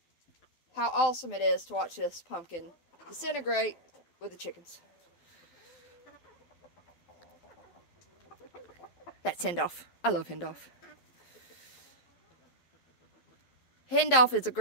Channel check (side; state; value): right; late; 12 ms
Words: how awesome it is to watch this pumpkin disintegrate with the chickens. That's Hendolph. I love Hendolph. Hendolph is a